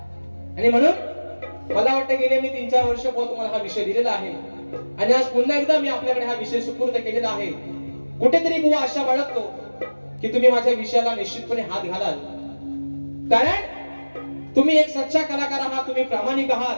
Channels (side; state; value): both; inverted; correlation -1.00